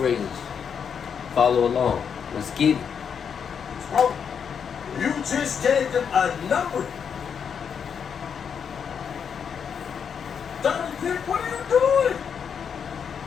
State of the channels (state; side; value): quieter; right; 7.1 dB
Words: Follow along. Let's get it. Oh, you just gave them a number. 30 kick, what are you doing?